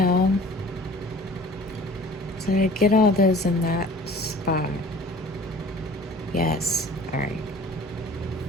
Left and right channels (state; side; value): normal; both; correlation 0.47